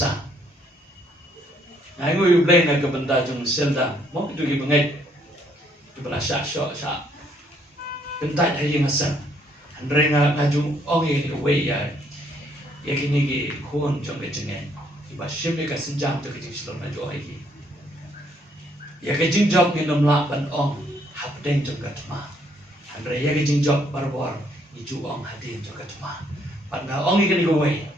Aku you blame nak kebenda jong selda. Mau itu kita bengai. Itu berasa syok. Bentai hari ngasan. Andre ngajung orang ini away ya. Ya kini ki kun jong kejengan. Iba simple kasenjam tu kejeng selom ngajung lagi. Ya kejeng job ni namlak ban ong. Hadeng juga cuma, Andre ya kejeng job barbor, itu ong hadeng juga cuma. Pada ong ikan igawai,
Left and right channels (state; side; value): normal; both; correlation 0.68